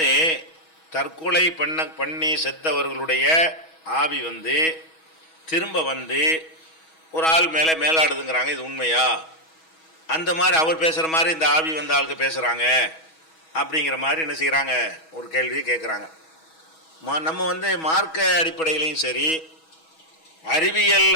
தற்கொலை பண்ணி செத்தவர்களுடைய ஆவி திரும்ப ஒரு ஆள் மேலே மேலாடுதுங்கிறாங்க. இது உண்மையா? அந்த மாதிரி அவர் பேசுகிற மாதிரி இந்த ஆவி ஆளுக்கு பேசுகிறாங்க அப்படிங்கிற மாதிரி என்ன செய்கிறாங்க, ஒரு கேள்வியை கேட்குறாங்க. நம்ம மார்க்க அடிப்படையிலையும் சரி, அறிவியல்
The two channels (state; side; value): late; right; 6.2 ms